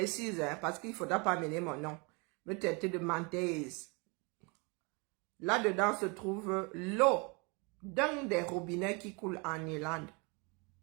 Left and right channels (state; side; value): quieter; left; 30.4 dB